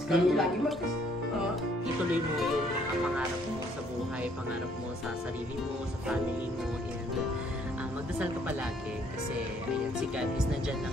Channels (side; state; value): both; normal; correlation 0.64